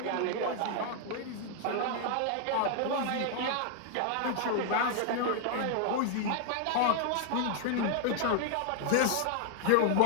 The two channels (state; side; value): different; both; correlation 0.00